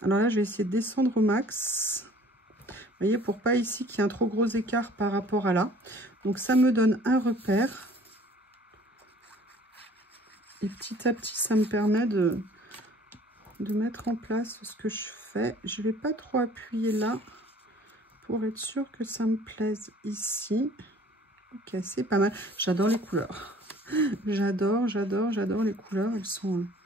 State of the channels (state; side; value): normal; both; correlation 0.52